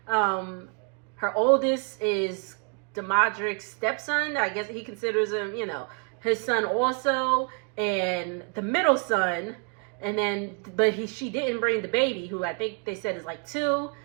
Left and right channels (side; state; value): left; quieter; 37.7 dB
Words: her oldest is the Modric's stepson. I guess he considers him, you know, his son also. And the middle son, and then, but she didn't bring the baby, who I think they said is like 2.